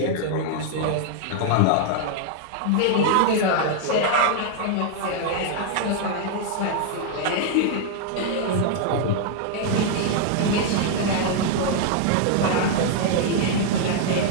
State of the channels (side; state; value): both; different; correlation 0.00